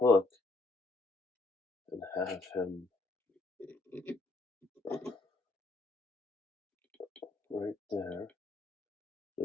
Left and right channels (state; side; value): quieter; right; 3.2 dB